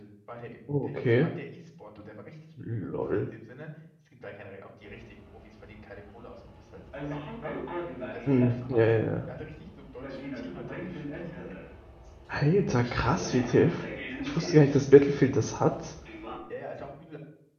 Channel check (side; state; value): both; identical; correlation 1.00